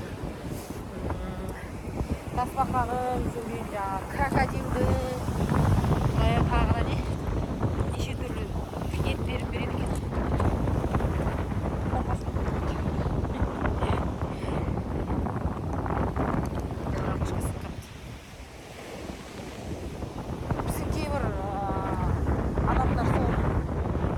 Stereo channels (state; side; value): identical; both; correlation 1.00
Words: крокодилдің, тағы не? Неше түрлі ет беріп береді екен. Біздің кейбір адамдар сол